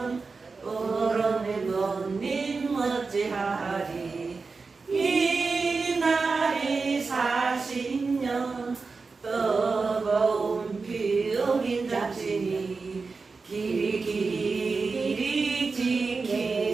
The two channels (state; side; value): quieter; left; 4.4 dB